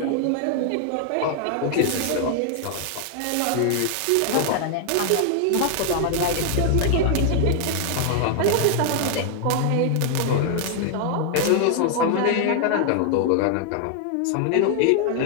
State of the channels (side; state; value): both; different; correlation 0.00